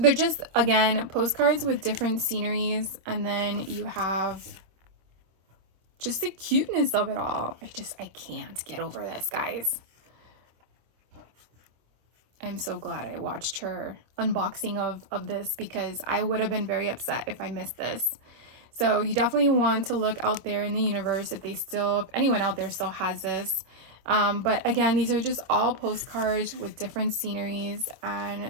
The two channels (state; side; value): late; left; 26 ms